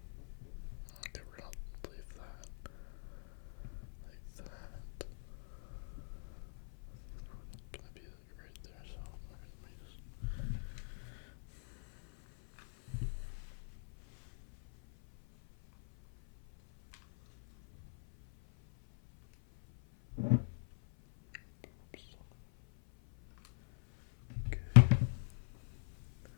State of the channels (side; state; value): right; silent; 51 dB below the other